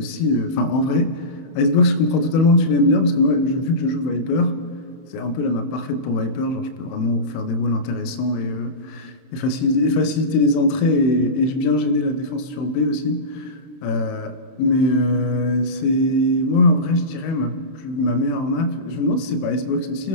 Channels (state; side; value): late; right; 30 ms